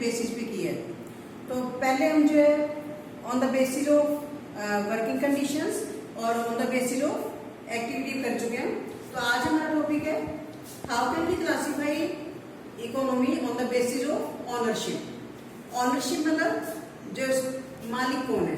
बेसिस पे की है। तो पहले हम जो है on the basis of working conditions और on the basis of activity कर चुके हैं। तो आज हमारा टॉपिक है how can we classify economy on the basis of ownership. Ownership मतलब जो मालिक कौन है।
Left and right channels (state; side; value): identical; both; correlation 1.00